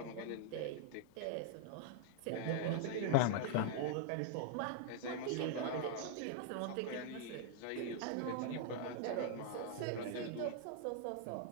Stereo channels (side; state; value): both; different; correlation 0.00